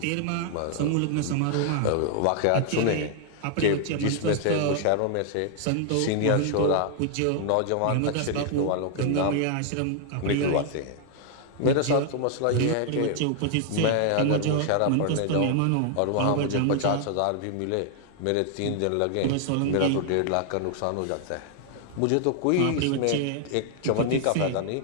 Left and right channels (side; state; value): both; different; correlation 0.00